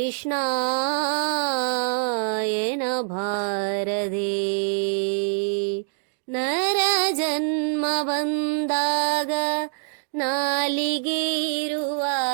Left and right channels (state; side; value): silent; left; digital silence